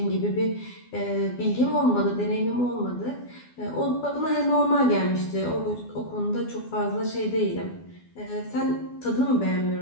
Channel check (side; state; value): right; late; 12 ms